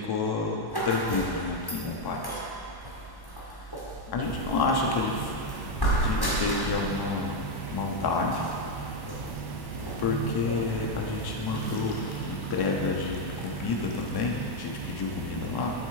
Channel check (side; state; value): right; late; 1.1 ms